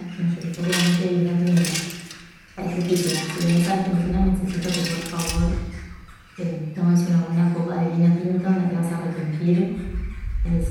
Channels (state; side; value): identical; both; correlation 1.00